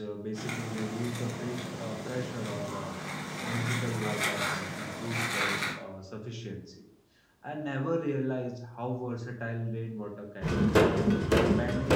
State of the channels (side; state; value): both; identical; correlation 1.00